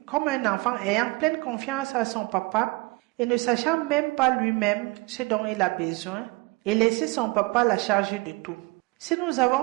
comme un enfant ayant pleine confiance à son papa et ne sachant même pas lui-même ce dont il a besoin et laisser son papa la charger de tout. Si nous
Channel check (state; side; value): quieter; left; 24.4 dB